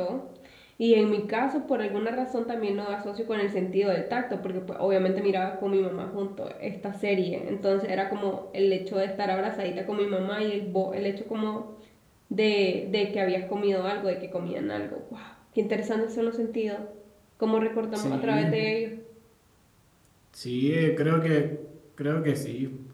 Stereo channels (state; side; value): identical; both; correlation 1.00